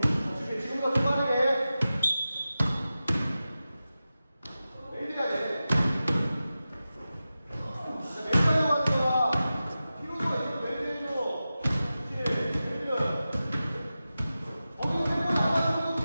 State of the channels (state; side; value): inverted; both; correlation -0.94